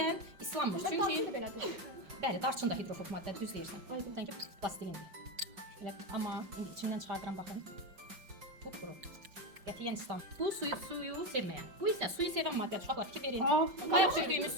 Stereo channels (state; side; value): late; left; 5.5 ms